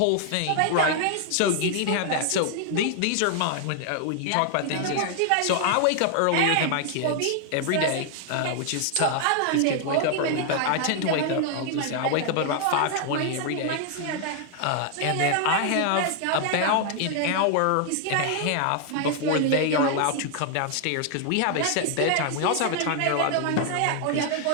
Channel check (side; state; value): both; different; correlation 0.00